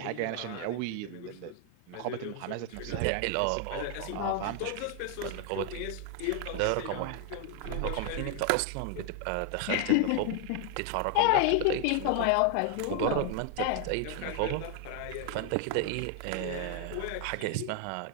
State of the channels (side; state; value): both; different; correlation 0.00